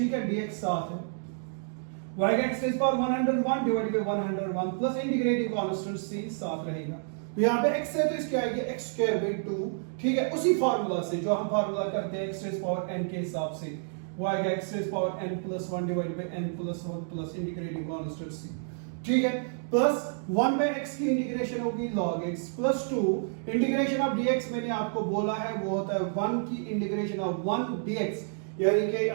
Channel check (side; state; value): left; silent; digital silence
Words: है, dx साथ है, y x raise power 101 divided by 101 plus integrating constant c साथ रहेगा, तो यहाँ पे x है तो इसकी आएगी x स्क्वायर बाय 2, ठीक है, उसी फार्मूला से जो हम फार्मूला करते हैं x रेज़ पावर n के हिसाब से, वो आएगा x raise power n plus 1 divided by n plus 1 plus integrating constant c, ठीक है, प्लस 1 बाय x की इंटीग्रेशन होगी log x plus 2 integration of dx, मैंने आपको बोला है वो होता है 1 की इंटीग्रेशन ऑफ 1 dx, यानी कि